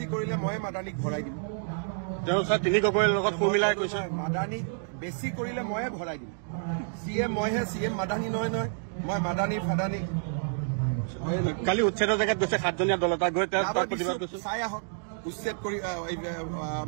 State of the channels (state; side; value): silent; left; digital silence